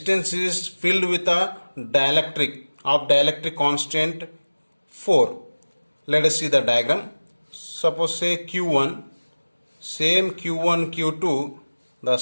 is filled with a dielectric of dielectric constant 4. Let us see the diagram. Suppose say q1, same q1 q2, the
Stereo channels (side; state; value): both; inverted; correlation -1.00